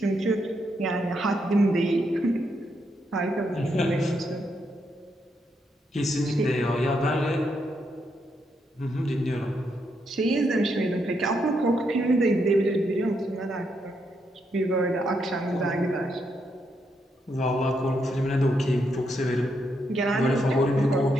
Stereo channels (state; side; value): normal; both; correlation 0.79